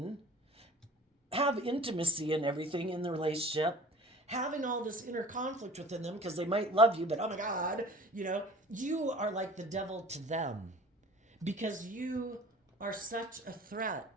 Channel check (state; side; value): normal; both; correlation 0.44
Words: have intimacy and everything in the relationship, having all this inner conflict within them because they might love you, but oh my God, you are like the devil to them because you are such a threat